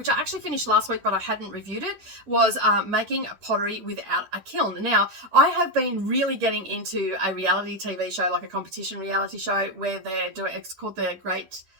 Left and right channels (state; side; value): late; left; 10 ms